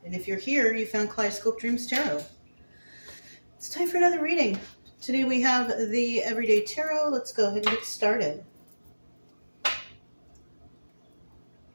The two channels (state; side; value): inverted; both; correlation -1.00